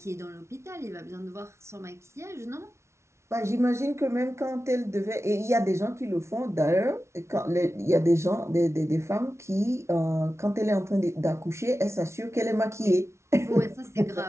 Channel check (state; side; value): late; left; 0.13 ms